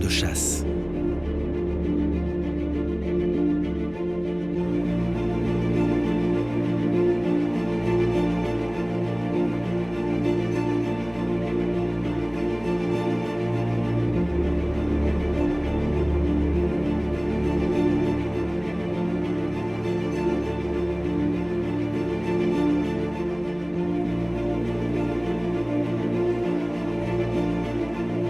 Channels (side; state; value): left; noise; hum, 22 dB below the sound